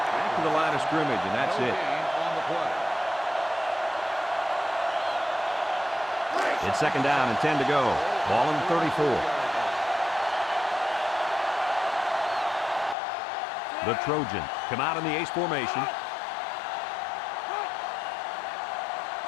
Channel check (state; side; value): drops out; right; at 13.0 s